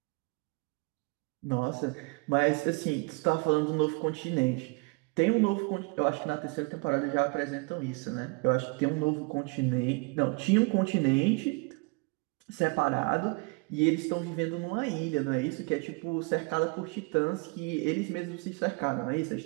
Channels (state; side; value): quieter; left; 30.0 dB